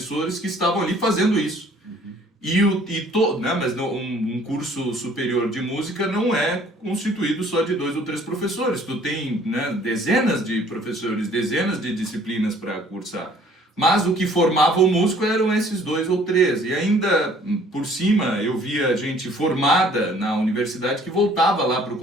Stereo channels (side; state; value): both; normal; correlation 0.56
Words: que estavam ali fazendo isso. Né, mas um curso superior de música não é constituído só de 2 ou 3 professores. Tu tem, né, dezenas de professores, dezenas de disciplinas para cursar. Mas o que formava o músico eram esses 2 ou 3. E ainda por cima eu via gente formada na universidade que voltava lá para o